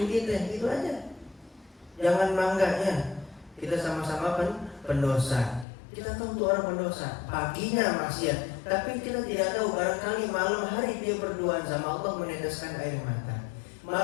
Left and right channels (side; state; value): right; drops out; at 5.7 s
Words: kita, gitu aja. Jangan bangganya, kita sama-sama pendosa. Kita tahu tuh orang pendosa, paginya maksiat, tapi kita tidak tahu barangkali malam hari dia berduaan sama Allah meneteskan air mata.